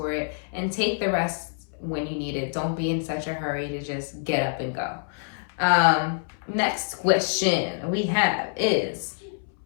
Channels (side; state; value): right; silent; 61 dB below the other